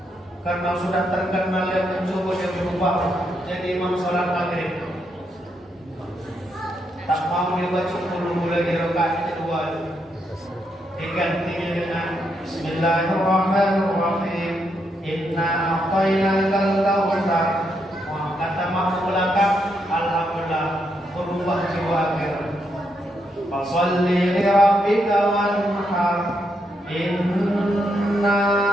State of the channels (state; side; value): normal; both; correlation 0.79